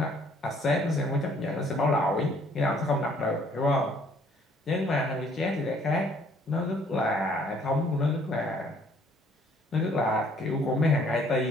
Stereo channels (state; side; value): normal; both; correlation 0.61